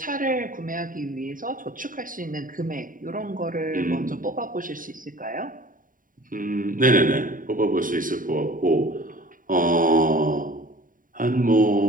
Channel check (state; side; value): late; left; 0.39 ms